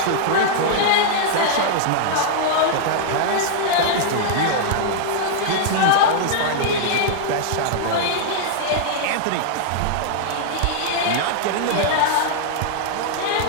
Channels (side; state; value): both; different; correlation -0.01